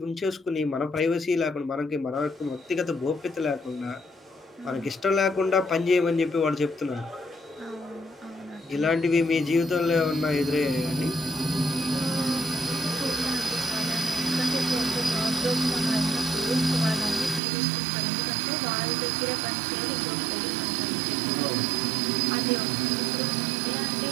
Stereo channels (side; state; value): left; drops out; at 17.4 s